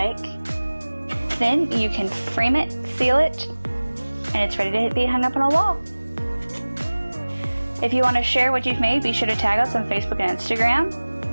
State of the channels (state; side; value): inverted; both; correlation -1.00